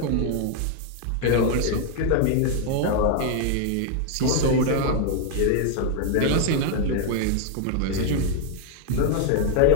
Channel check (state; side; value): different; both; correlation 0.00